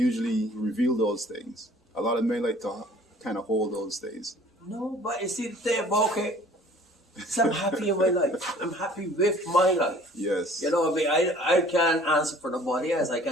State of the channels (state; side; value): normal; both; correlation 0.52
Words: reveal those things. A lot of men like to kind of hold those things. No, but you see the thing about it, so I'm happy in my life. I'm happy with my life. Yes. You know what I mean? I can't answer for nobody else. I